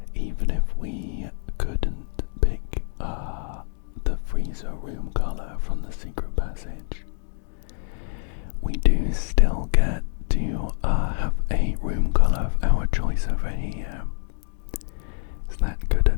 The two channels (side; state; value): right; silent; digital silence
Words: Even if we couldn't pick the freezer room colour from the secret passage, we do still get to have a room colour of our choice over here. Is that good